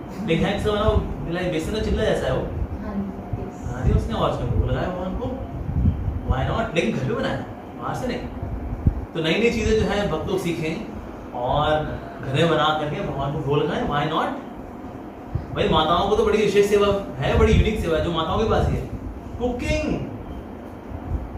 लेकिन है किसका बना, वो बेसन का चिल्ला जैसा है वो, हाँ उसने और उसमें वो लगाया भगवान को, व्हाई नॉट, लेकिन घर पे बनाया, बाहर से नहीं। तो नई चीजें जो है भक्त लोग सीखें और घर में बना करके भगवान को भोग लगाएं, व्हाई नॉट। भाई माताओं को तो बड़ी विशेष सेवा है, बड़ी यूनिक सेवा है जो माताओं के पास ही है, कुकिंग।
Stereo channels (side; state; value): both; identical; correlation 1.00